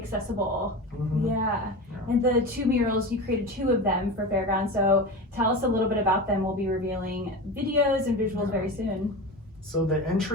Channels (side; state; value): both; normal; correlation 0.27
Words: Mm-hmm. Yeah. And the 2 murals, you created 2 of them for Fairgrounds, so tell us a little bit about them. We'll be revealing videos and visuals very soon. So the